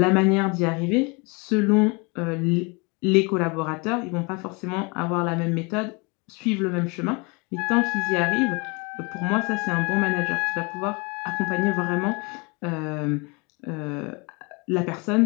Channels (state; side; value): quieter; right; 29.5 dB